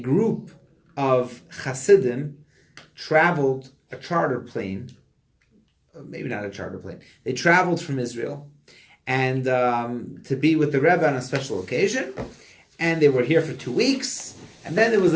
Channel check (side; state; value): both; identical; correlation 1.00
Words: of Hasidim traveled a charter plane, maybe not a charter plane. They traveled from Israel and to be with the Rebbe on a special occasion, and they were here for 2 weeks, and then it was